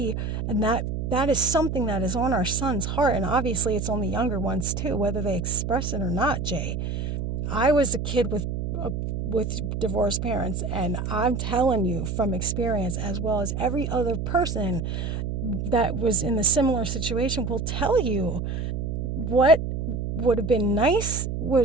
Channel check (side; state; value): right; noise; hum, 3 dB below the sound